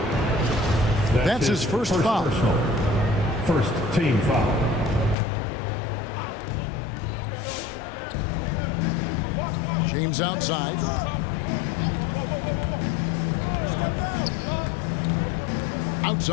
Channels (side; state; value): right; drops out; at 5.2 s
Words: That's his first foul. First team foul. James outside.